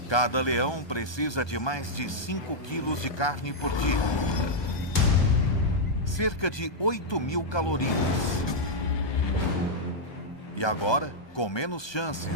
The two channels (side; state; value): right; late; 1.2 ms